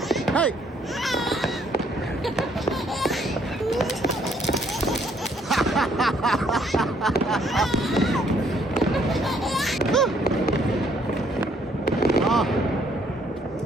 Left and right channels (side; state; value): both; normal; correlation 0.66